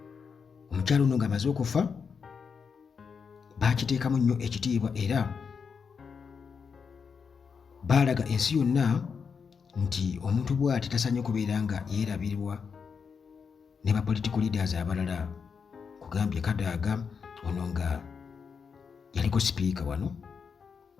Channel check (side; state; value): right; quieter; 6.0 dB